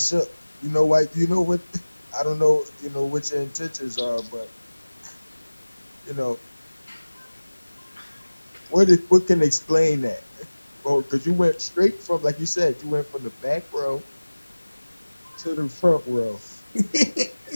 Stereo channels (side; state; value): both; inverted; correlation -1.00